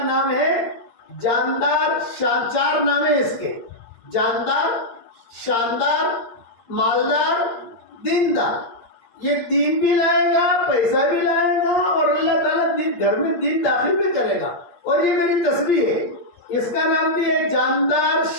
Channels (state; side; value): late; right; 8.7 ms